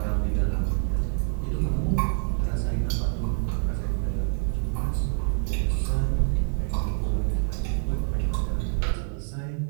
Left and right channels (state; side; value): silent; left; 61 dB below the other